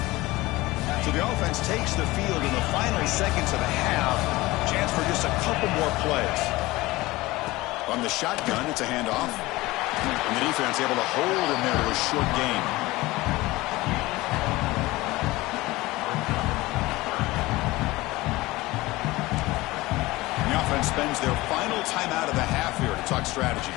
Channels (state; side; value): quieter; right; 19.9 dB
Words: So the offense takes the field in the final seconds of the half. Chance for just a couple more plays. On the shotgun, it's a handoff. And the defense able to hold him there to a short gain. The offense spends their final timeout of the half here to talk strategy.